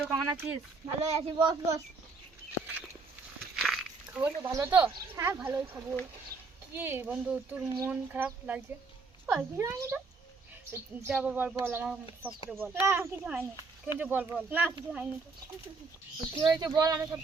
কেমন আছিস? ভালোই আছি, বস বস। খবর তো ভালো তো? হ্যাঁ ভালোই খবর। কি বন্ধু, তোর মন খারাপ লাগছে? কিছু হয়নি তো। যা বল বল, আমার সব করে বল। না কিছু হয়নি। কিন্তু বল বল, না কিছু হয়নি তো। কি হয়েছে বল, আমি সব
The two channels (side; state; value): left; quieter; 4.2 dB